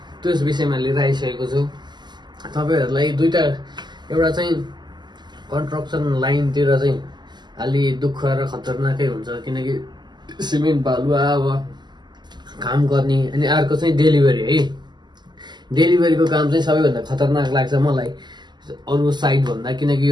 त्यस विषयमा लिएर आइसकेको छु तपाईँहरूलाई। दुईटा, एउटा चाहिँ कन्स्ट्रक्सन लाइनतिर चाहिँ अलि दुःख र खतरनाकै हुन्छ किनकि सिमेन्ट बालुवा अब काम गर्ने, अनि अर्को चाहिँ डेलिभरी है। डेलिभरीको काम चाहिँ सबैभन्दा खतरनाक लाग्छ मलाई अरू साइड भन्दा, किनकि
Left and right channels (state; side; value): late; left; 0.21 ms